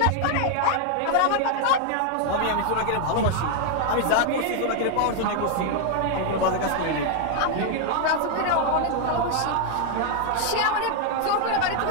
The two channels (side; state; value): both; different; correlation 0.00